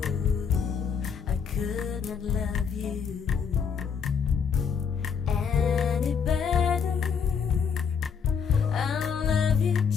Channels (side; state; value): right; quieter; 6.6 dB